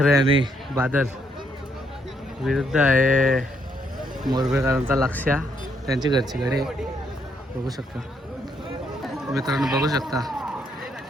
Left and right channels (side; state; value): both; normal; correlation 0.73